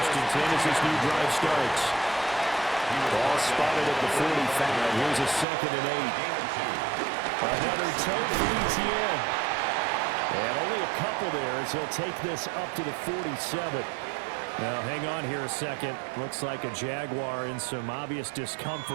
and 10 as this new drive starts. Ball spotted at the 45. Here's a 2nd and 8. Another tote for ETN. And only a couple there as he'll take this up to the 47. Now, hang on here a second. Looks like a Jaguar in some obvious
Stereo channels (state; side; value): drops out; left; at 5.5 s